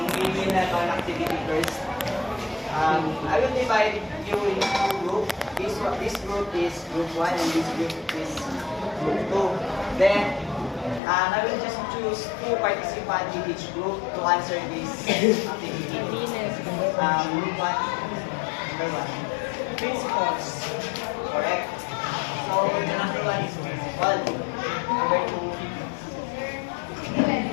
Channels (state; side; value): drops out; right; at 11.0 s